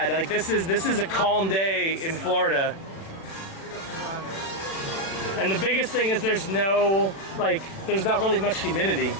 Like this is a calm day in Florida. And the biggest thing is there's not really much humidity.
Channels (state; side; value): late; right; 36 ms